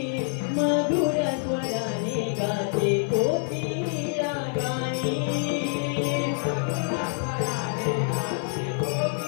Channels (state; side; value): silent; right; 61 dB below the other